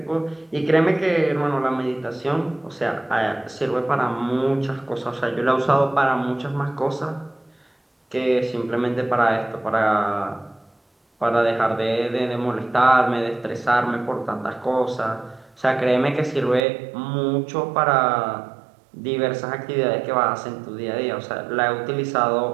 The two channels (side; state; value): left; drops out; at 16.6 s